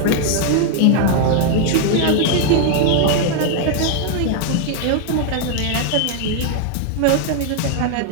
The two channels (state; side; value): different; both; correlation 0.00